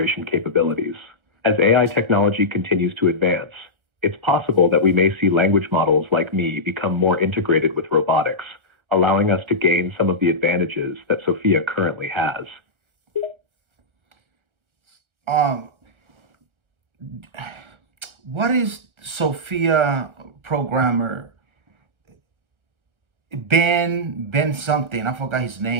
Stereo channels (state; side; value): late; left; 1.4 ms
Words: capabilities. As AI technology continues to advance, it's possible that we may see language models like me become more integrated with robotics, allowing us to gain some of the advantages that Sophia currently has. Um, what is Sophia programmer Ben something? I forgot his